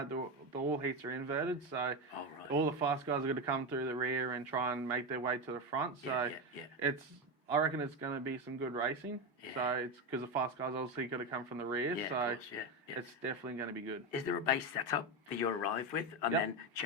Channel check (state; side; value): normal; both; correlation 0.14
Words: the all heats are inverted, so all the fast guys are going to come through the rear and try and make their way to the front. So I reckon it's going to be some good racing. So it's because the fast guys obviously got to come from the rear, so it's definitely going to be good. Is there a base setup that you arrive with and then